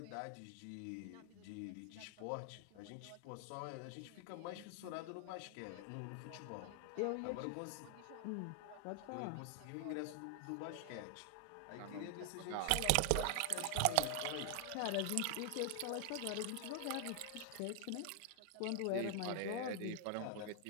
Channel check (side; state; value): both; different; correlation 0.00